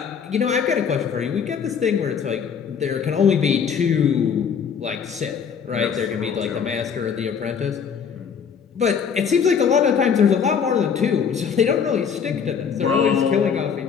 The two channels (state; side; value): quieter; right; 6.9 dB